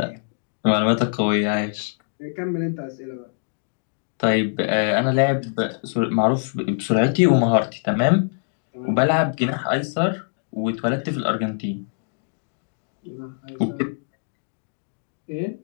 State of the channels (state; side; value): silent; right; digital silence